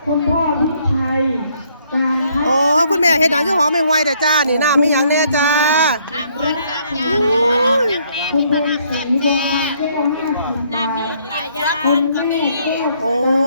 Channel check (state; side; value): inverted; both; correlation -0.67